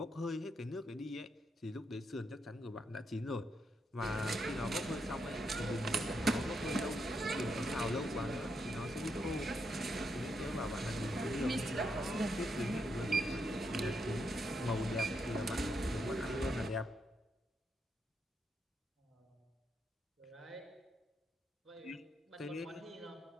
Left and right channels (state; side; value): normal; both; correlation 0.80